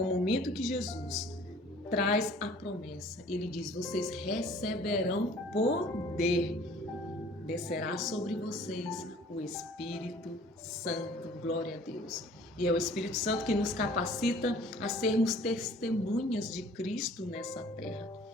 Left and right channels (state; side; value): normal; both; correlation 0.51